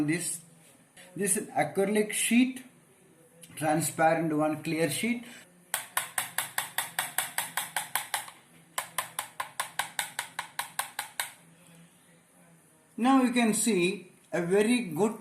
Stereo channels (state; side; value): identical; both; correlation 1.00